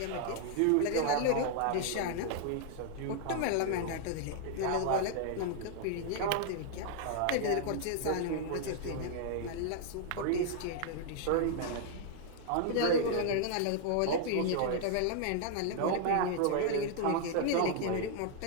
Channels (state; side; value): different; both; correlation 0.00